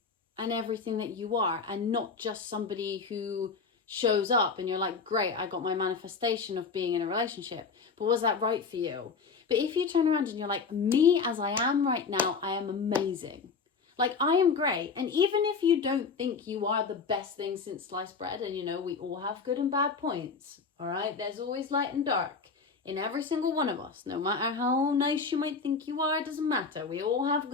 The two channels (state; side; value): quieter; right; 5.0 dB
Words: and everything that you are, and not just somebody who shows up and you're like, great, I got my manifestation of being in a relationship, but was that right for you? But if you turn around and you're like, me as I am right now, I am amazing. Like, I am great. And even if you don't think you are the best thing since sliced bread, and you know, we all have good and bad points, all right? There's always light and dark in every single one of us. No matter how nice you might think you are, it doesn't matter. We all have